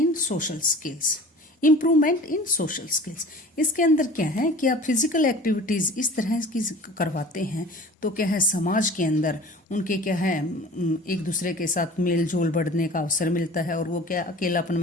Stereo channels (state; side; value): normal; both; correlation 0.42